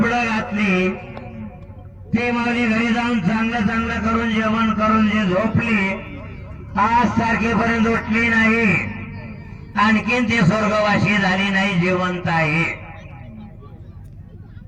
घातली. ती माऊली घरी जाऊन चांगलं करून जेवण करून जे झोपली, आज तारखेपर्यंत उठली नाही, आणखीन ती स्वर्गवासी झाली नाही, जिवंत आहे.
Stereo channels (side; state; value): both; identical; correlation 1.00